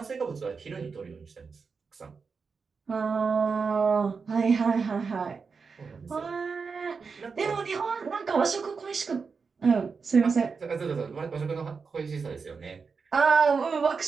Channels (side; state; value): left; quieter; 5.1 dB